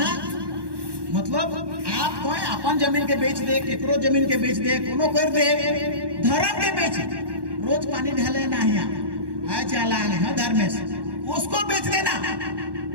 मतलब आप कोई अपन जमीन के बेच दे, केकरो जमीन के बेच दे, कोनो कर दे, धर्म के बेच। रोज पानी ढाले ना है चाला है धर्मेश, उसको बेच देना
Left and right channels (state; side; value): late; left; 1.1 ms